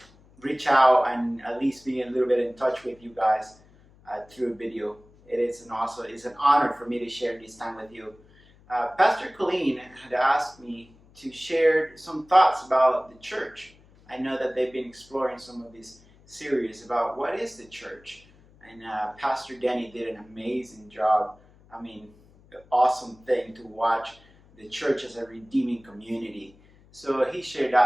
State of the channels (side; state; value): left; noise; hum, 27 dB below the sound